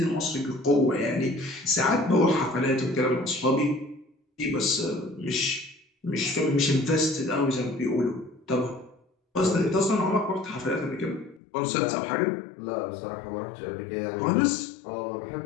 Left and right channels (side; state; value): right; drops out; at 11.4 s